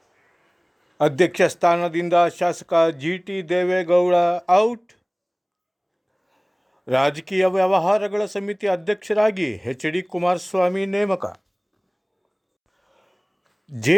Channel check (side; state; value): both; identical; correlation 1.00